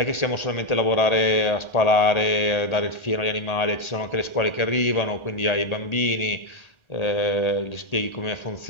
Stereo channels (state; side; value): late; right; 1.4 ms